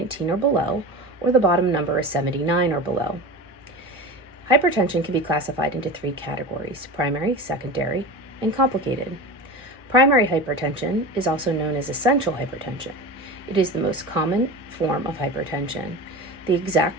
or below, or the bottom number is 79 or below. Hypertension can be classified into three categories: primary, secondary, and complicated. Primary hypertension is also known as essential hypertension. It is the most common form of hypertension. The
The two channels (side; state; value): both; normal; correlation 0.29